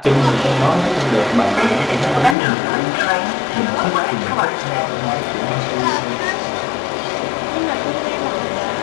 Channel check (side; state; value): right; drops out; at 2.4 s